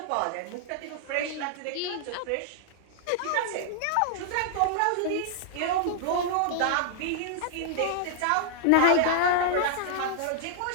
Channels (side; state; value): both; different; correlation -0.01